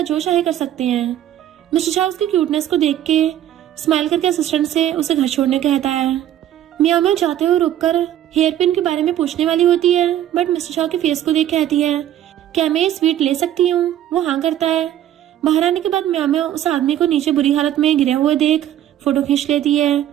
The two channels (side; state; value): left; quieter; 11.7 dB